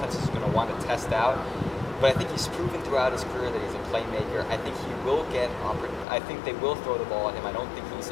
is going to want to test out. But I think he's proven throughout his career that he's a playmaker. I think he will get I think they will throw the ball at him. I don't think he's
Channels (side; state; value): right; drops out; at 6.1 s